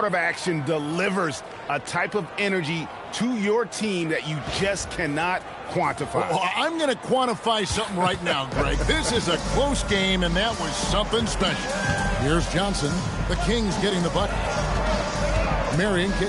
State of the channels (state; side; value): identical; both; correlation 1.00